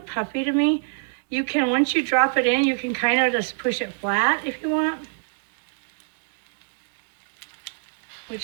puffy to me. You can, once you drop it in, you can kind of just push it flat if you want.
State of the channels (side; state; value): left; silent; digital silence